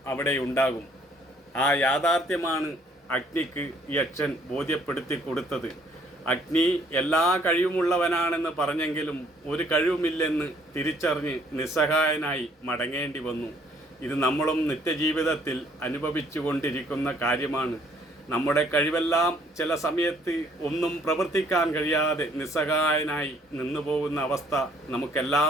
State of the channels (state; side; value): normal; both; correlation 0.63